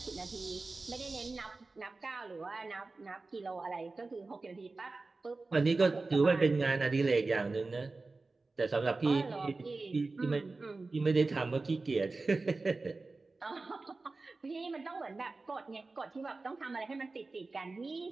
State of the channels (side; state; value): left; quieter; 3.6 dB